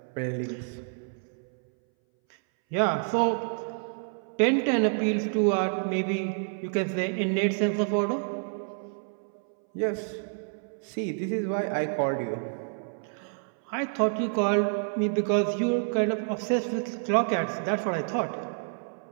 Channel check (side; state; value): left; silent; 59 dB below the other